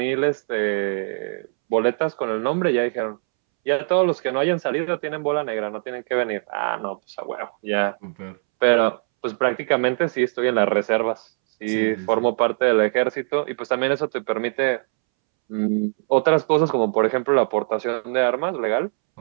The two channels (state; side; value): silent; left; 64 dB below the other